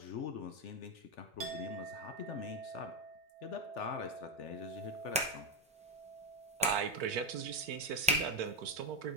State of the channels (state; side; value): normal; both; correlation 0.08